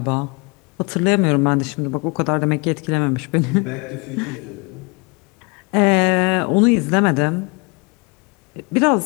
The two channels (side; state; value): right; quieter; 30.0 dB